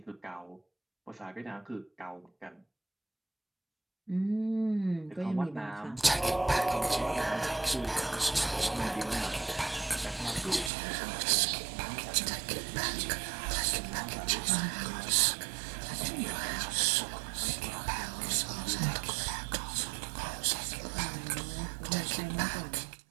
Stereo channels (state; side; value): drops out; left; at 10.7 s